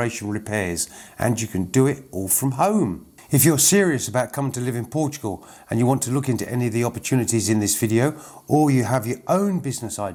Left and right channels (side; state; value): both; identical; correlation 1.00